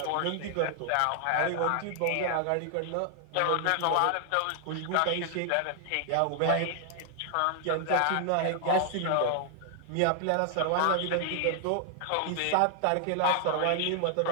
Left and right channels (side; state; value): both; different; correlation 0.00